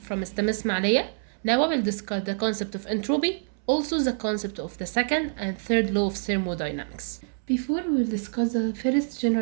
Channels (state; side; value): silent; left; 61 dB below the other